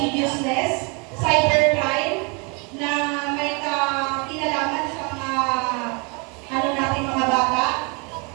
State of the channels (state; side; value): quieter; left; 32.1 dB